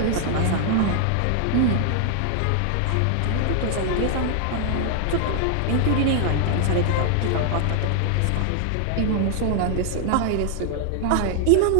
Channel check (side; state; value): both; different; correlation 0.00